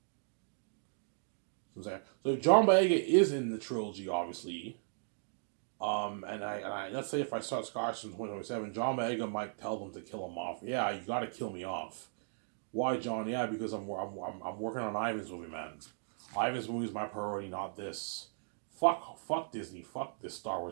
So if John Boyega is in the trilogy, obviously, and I let's say if I start Scotch in 2027, John Boyega might tell them to kill him off. Yeah, you got to kill me off. Why, John? Yeah, because I'm working on Ivan's movie, man. Ivan's movie is my priority, not this. Fuck Disney. Fuck this Star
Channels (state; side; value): silent; left; digital silence